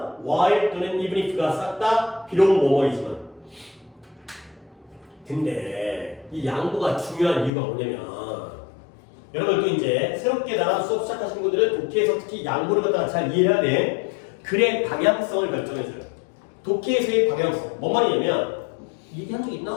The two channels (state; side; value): drops out; right; at 7.5 s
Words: while 또는 even if가 싹 다 비록 뭐뭐이지만 근데 이 양보가 중요한 이유가 뭐냐면 여러분 또 이제 새롭게 나랑 수업 시작하신 분들은 독해에서 특히 양보를 갖다가 잘 이해해야 돼. 글의 방향성을 결정해줘요. 독해에서의 방향성 뭔 말이냐면 얘기한 적